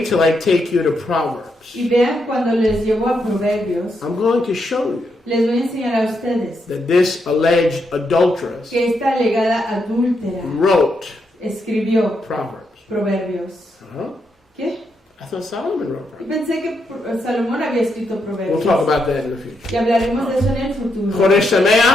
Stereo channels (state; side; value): normal; both; correlation 0.80